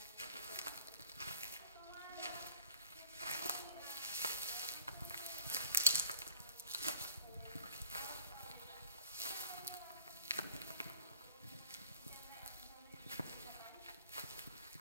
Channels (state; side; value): inverted; both; correlation -0.51